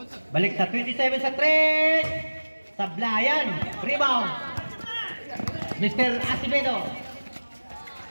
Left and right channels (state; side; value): inverted; both; correlation -1.00